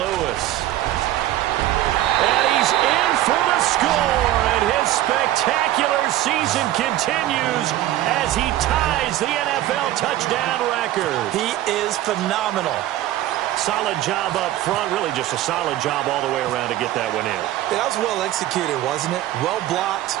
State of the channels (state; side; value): quieter; left; 14.2 dB